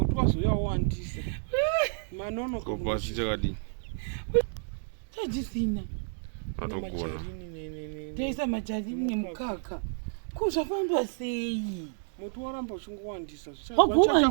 wazoyawandisa manono kopasi chakadi chajisina atogona teisa majarini nemukaka kuzvafamba sei mutu waramba uchingowandisa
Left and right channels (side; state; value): left; silent; digital silence